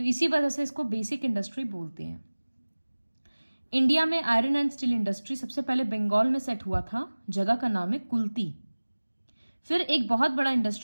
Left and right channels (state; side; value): inverted; both; correlation -1.00